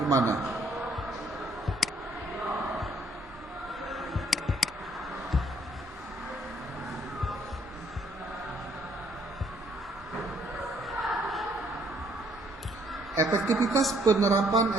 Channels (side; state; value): both; normal; correlation 0.66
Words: gimana? Efektivitas penerapan